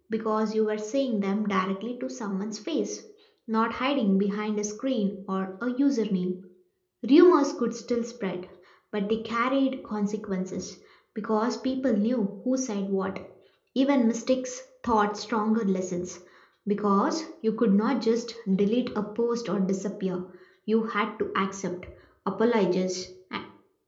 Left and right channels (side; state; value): both; identical; correlation 1.00